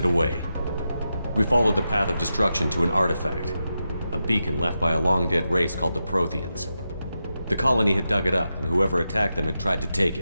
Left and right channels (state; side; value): inverted; both; correlation -0.89